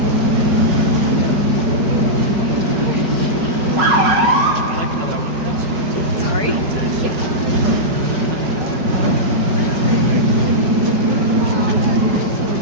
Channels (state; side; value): late; left; 5.4 ms